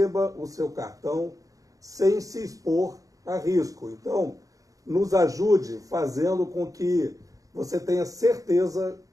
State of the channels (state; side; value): late; left; 0.17 ms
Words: o seu cartão sem se expor a risco. Então, nos ajude fazendo com que você tenha certeza